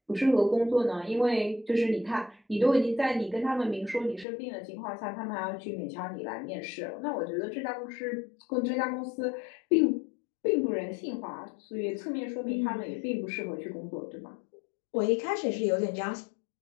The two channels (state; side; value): drops out; right; at 4.2 s